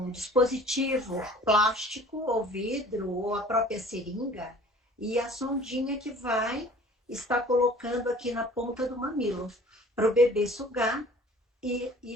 dispositivo plástico ou vidro ou a própria seringa e a sondinha que vai estar colocando aqui na ponta do mamilo para o bebê sugar e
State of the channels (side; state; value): both; normal; correlation 0.49